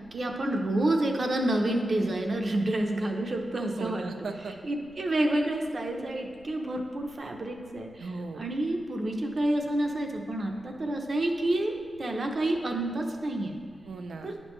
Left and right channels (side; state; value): right; noise; rumble, 27 dB below the sound